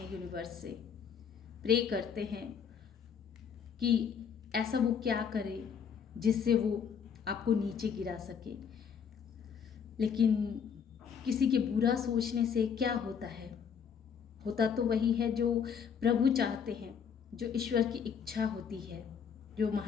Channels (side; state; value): right; quieter; 7.1 dB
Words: यूनिवर्स से प्रे करते हैं कि ऐसा वो क्या करे जिससे वो आपको नीचे गिरा सके। लेकिन किसी के बुरा सोचने से क्या होता है? होता तो वही है जो प्रभु चाहते हैं, जो ईश्वर की इच्छा होती है, जो